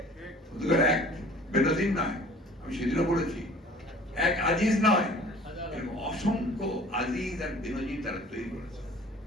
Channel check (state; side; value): normal; both; correlation 0.48